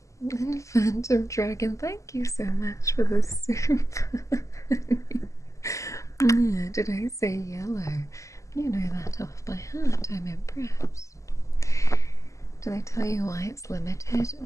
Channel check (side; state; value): right; late; 0.15 ms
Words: And Phantom Dragon, thank you so much for the soup. Did I say yellow? You know that off by heart. I'm impressed. Do they tell you why it's limited?